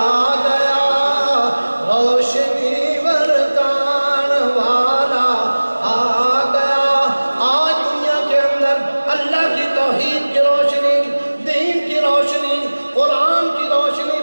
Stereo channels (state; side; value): inverted; both; correlation -1.00